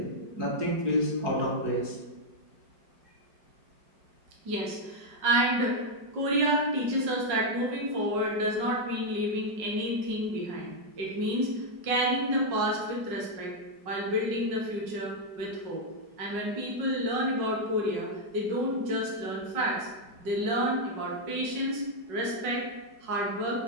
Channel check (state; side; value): late; left; 5.4 ms